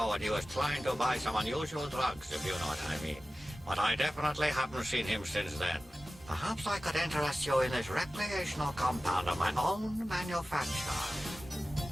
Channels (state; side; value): normal; both; correlation 0.95